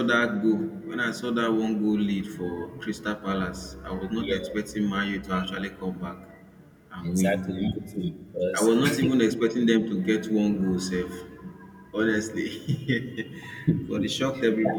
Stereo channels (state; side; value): identical; both; correlation 1.00